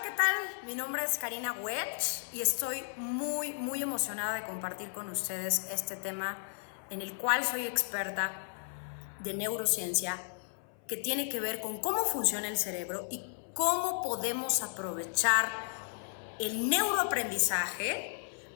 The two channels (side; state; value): right; silent; 55 dB below the other